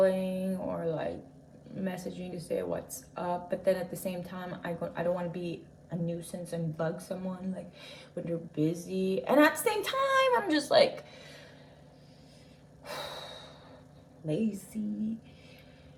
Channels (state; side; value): identical; both; correlation 1.00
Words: or like messaging to say what's up, but then at the same time, I don't want to be a nuisance and bug someone like when they're busy, and at the same time, I'm just like lazy.